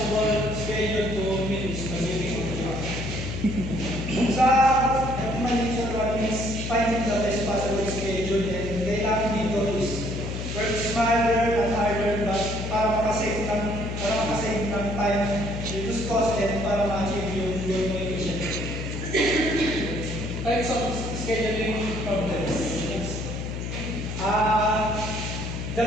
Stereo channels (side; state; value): left; noise; hum, 5 dB below the sound